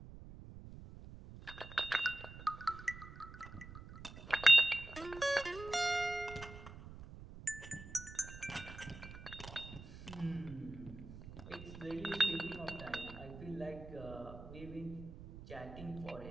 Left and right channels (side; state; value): right; noise; rumble, 13 dB below the sound